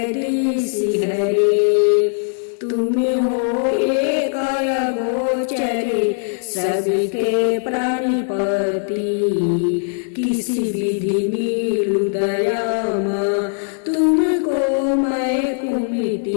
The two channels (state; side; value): silent; right; digital silence